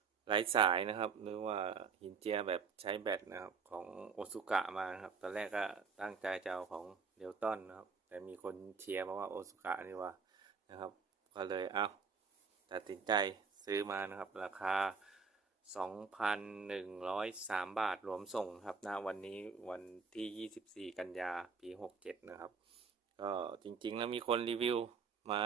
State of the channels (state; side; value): quieter; left; 5.5 dB